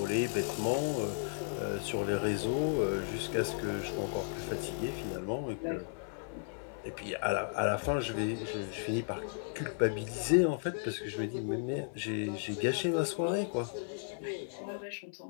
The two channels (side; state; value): right; silent; 55 dB below the other